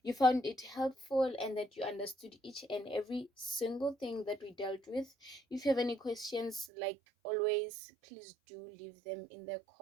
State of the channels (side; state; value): left; drops out; at 6.7 s